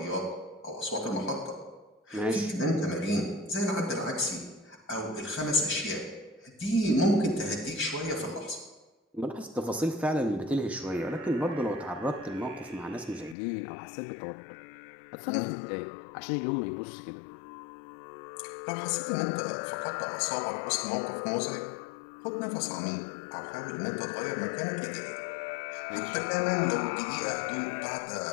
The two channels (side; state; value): right; drops out; at 13.4 s